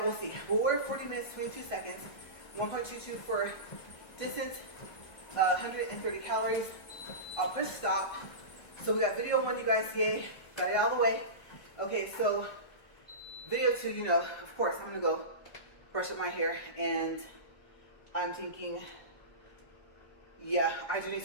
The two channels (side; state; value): right; late; 1.5 ms